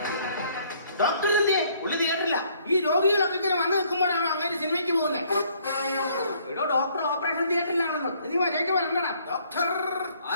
ഡോക്ടർ എന്തേ? പുള്ളി തിയേറ്ററില്ല. ഈ രോഗികളൊക്കെ ഇങ്ങനെ വന്നു നിൽക്കുമ്പോഴാണ് അങ്ങനെ സിനിമയ്ക്ക് പോകുന്നത്. എടോ, ഡോക്ടർ ഓപ്പറേഷൻ തിയേറ്ററിലാണെന്ന്. നീ വരേക്ക് വരണ്ടടാ. ഡോക്ടർ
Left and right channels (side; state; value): both; inverted; correlation -0.63